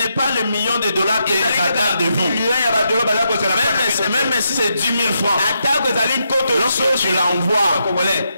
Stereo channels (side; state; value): both; inverted; correlation -0.82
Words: pas le million de dollars qui attendent de vous. Même si c'est 10 000 francs. Lorsque tu l'envoies,